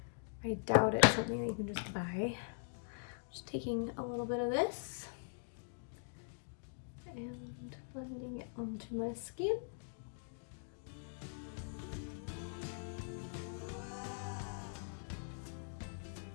I doubt it's something that you can just buy. Just taking a little bit of this and blending it onto my skin.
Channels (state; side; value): silent; right; digital silence